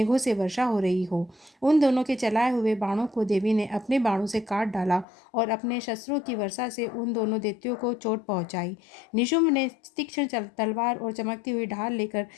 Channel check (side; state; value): right; drops out; at 5.1 s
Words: से वर्षा हो रही हो। उन दोनों के चलाए हुए बाणों को देवी ने अपने बाणों से काट डाला और अपने शस्त्रों की वर्षा से उन दोनों दैत्यों को चोट पहुंचाई। निशुंभ ने तीक्ष्ण तलवार और चमकती हुई ढाल लेकर